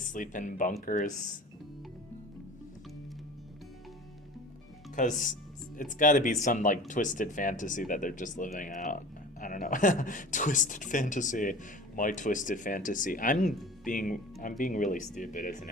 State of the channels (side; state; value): both; normal; correlation 0.39